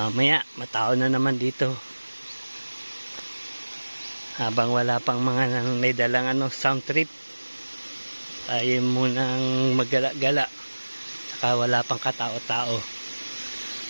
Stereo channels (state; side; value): inverted; both; correlation -1.00